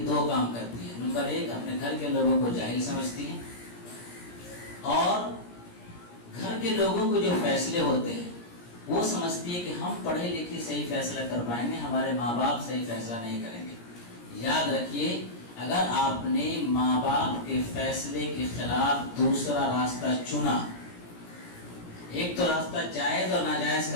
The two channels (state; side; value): late; right; 17 ms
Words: دو کام کرتی ہیں. نمبر ایک, اپنے گھر کے لوگوں کو جاہل سمجھتی ہیں اور گھر کے لوگوں کو جو فیصلے ہوتے ہیں وہ سمجھتی ہے کہ ہم پڑھے لکھے صحیح فیصلہ کر پائیں گے, ہمارے ماں باپ صحیح فیصلہ نہیں کریں گے. یاد رکھیے, اگر آپ نے ماں باپ کے فیصلے کے خلاف دوسرا راستہ چنا, ایک تو راستہ جائز اور ناجائز